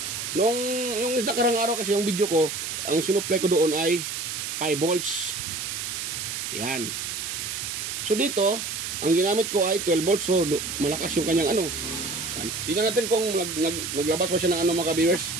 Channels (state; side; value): noise; right; hiss, 4 dB below the sound